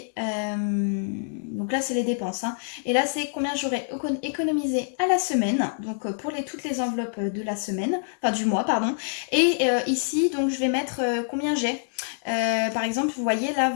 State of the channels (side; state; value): right; silent; digital silence